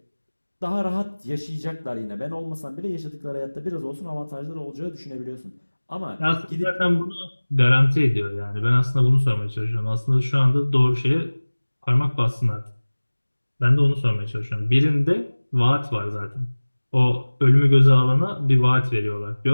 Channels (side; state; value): both; inverted; correlation -1.00